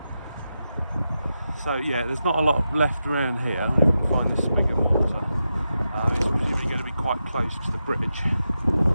So yeah, there's not a lot left around here. If we can find this spigot mortar, it's presumably going to be quite close to the bridge.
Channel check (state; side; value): inverted; both; correlation -0.89